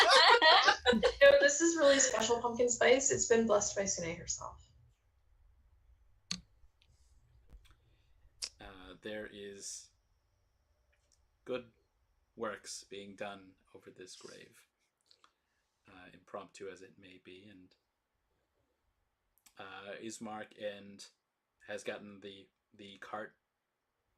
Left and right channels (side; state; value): both; identical; correlation 1.00